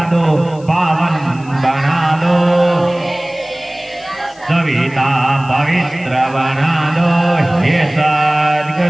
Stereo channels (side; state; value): left; noise; hiss, 26 dB below the sound